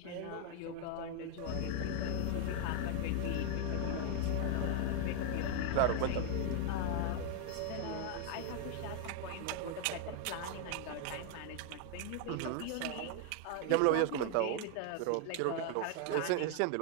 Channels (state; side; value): different; both; correlation 0.00